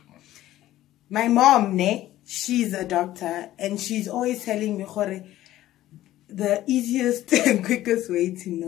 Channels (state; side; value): quieter; right; 14.4 dB